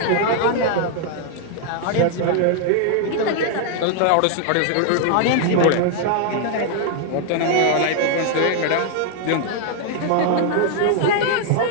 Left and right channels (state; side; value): different; both; correlation 0.00